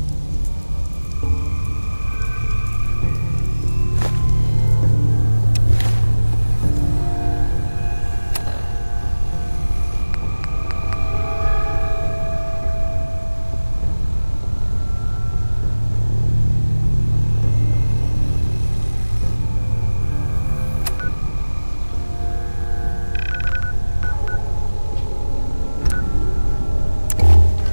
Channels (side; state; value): both; inverted; correlation -1.00